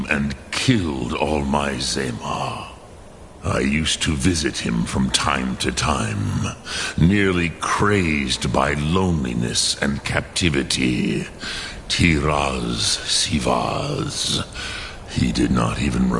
and killed all my Zema. I used to visit him from time to time, nearly crazed by loneliness and captivity. Tiraz Sivaz. He did not even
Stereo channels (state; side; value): identical; both; correlation 1.00